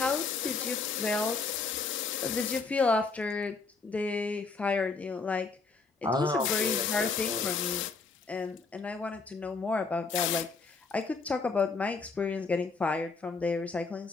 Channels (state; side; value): quieter; right; 4.3 dB